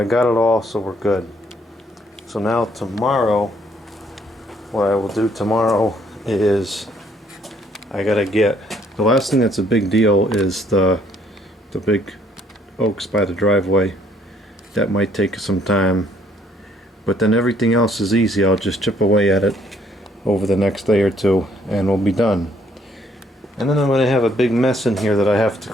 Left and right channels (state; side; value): normal; both; correlation 0.66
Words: got it all, so we're good. So now tomorrow, what I will do tomorrow is I gotta get, the last thing that's a big deal is the big oaks by the driveway. That might take some time, but then everything else is easy. I'll just chip away at it over the next day or two and we'll be done. And then I'm going to have a big mess in here that I have to